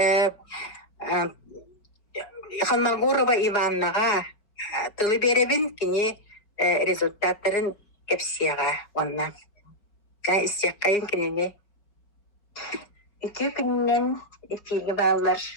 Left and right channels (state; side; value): late; right; 4.8 ms